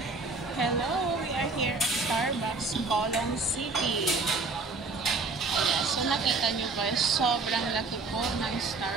Hello, we are here at Starbucks, Colong City. Ayan, so nakita nyo guys, sobrang laki po ng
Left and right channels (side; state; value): left; quieter; 3.8 dB